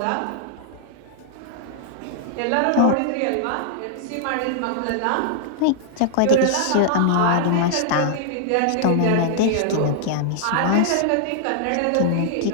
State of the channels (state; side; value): different; both; correlation -0.01